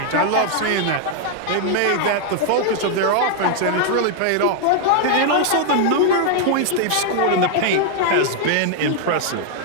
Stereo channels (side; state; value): both; different; correlation 0.00